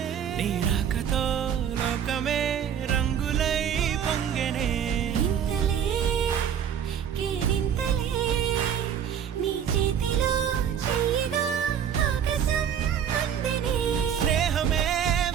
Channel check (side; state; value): left; quieter; 8.5 dB